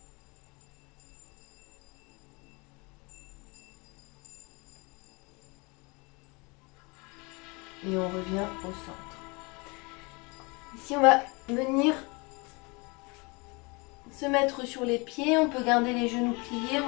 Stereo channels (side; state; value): right; quieter; 28.1 dB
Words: Et on revient au centre. Ici, on va venir se mettre sur les pieds. On peut garder les genoux pliés. On